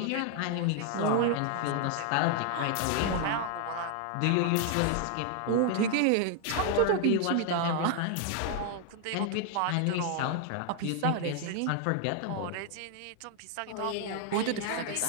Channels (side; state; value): both; different; correlation 0.00